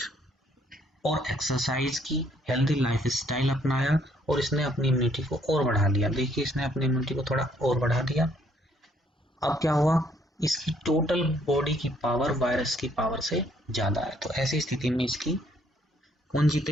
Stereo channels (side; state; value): both; normal; correlation 0.66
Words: और एक्सरसाइज की, हेल्दी लाइफस्टाइल अपनाया और इसने अपनी इम्यूनिटी को और बढ़ा दिया। देखिए, इसने अपनी इम्यूनिटी को थोड़ा और बढ़ा दिया। अब क्या हुआ, इसकी टोटल बॉडी की पावर वायरस की पावर से ज्यादा है। तो ऐसी स्थिति में इसकी कौन